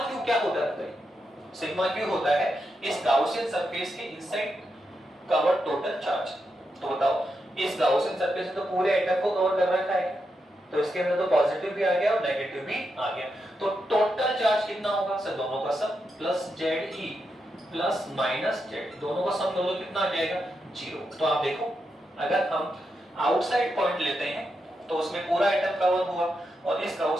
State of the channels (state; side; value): normal; both; correlation 0.85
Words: Q क्या होता है? सिग्मा क्यू होता है इस गाउसियन सरफेस के इनसाइड कवर्ड टोटल चार्ज। तो बताओ इस गाउसियन सरफेस ने तो पूरे एटम को कवर कर रखा है, तो इसके अंदर तो पॉजिटिव भी आ गया और नेगेटिव भी आ गया। तो टोटल चार्ज कितना होगा सर? दोनों का sum plus Z E plus minus Z, दोनों का सम दोनों कितना आ जाएगा? जीरो। तो आप देखो अगर हम आउटसाइड पॉइंट लेते हैं तो उसमें पूरा एटम कवर हुआ, और इस